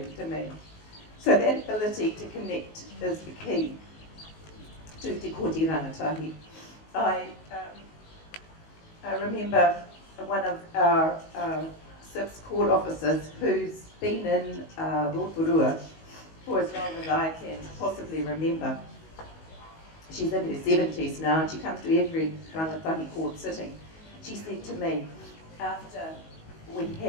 to me. So that ability to connect is the key to Te Kooti Rangatahi. I remember one of our SIPS court officers who's been in Rotorua for as long as I can possibly remember. She's in her 70s now and she comes to every rangatahi court sitting. She said to me, after we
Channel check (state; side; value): late; right; 19 ms